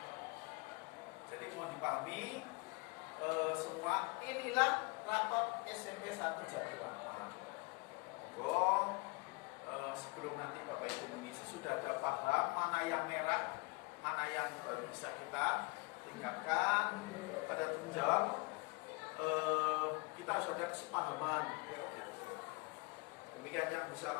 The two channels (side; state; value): right; quieter; 28.7 dB